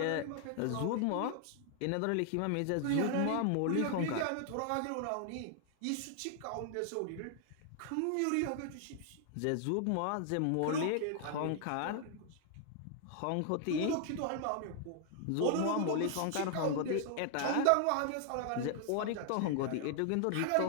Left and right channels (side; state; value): both; different; correlation 0.00